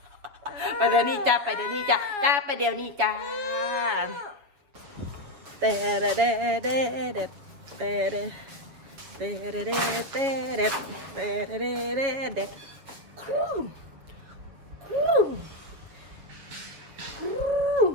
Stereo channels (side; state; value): left; late; 7.3 ms